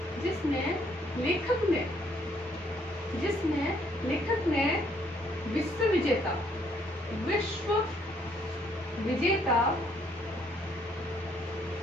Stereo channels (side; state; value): both; normal; correlation 0.67